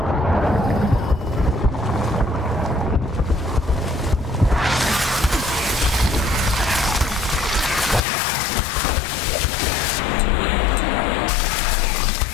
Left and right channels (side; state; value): right; drops out; at 8.0 s